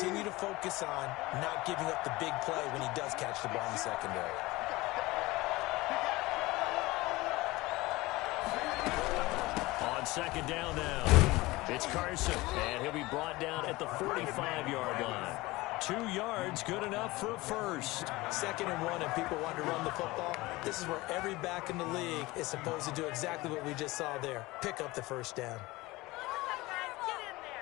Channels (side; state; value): right; quieter; 20.6 dB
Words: to focus on not giving up the big play when he does catch the ball in the secondary. On 2nd down now, it's Carson, and he'll be brought down at the 45-yard line. 2 yards, good enough for a first. 2nd and 1, and people want to run the football. This is where every back in the league is supposed to do exactly what we just saw there. Pick up the first down.